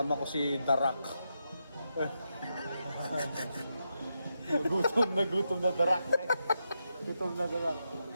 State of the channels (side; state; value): both; inverted; correlation -0.85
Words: ko si Darak. Nagutom na Darak. Gutom na Darak.